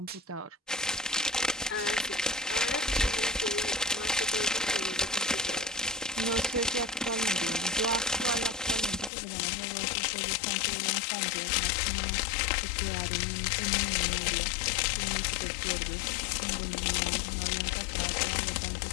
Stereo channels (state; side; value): drops out; right; at 9.1 s